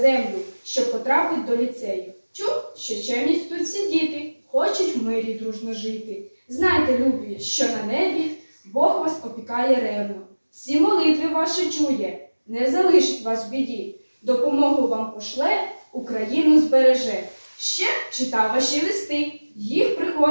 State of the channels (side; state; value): both; inverted; correlation -1.00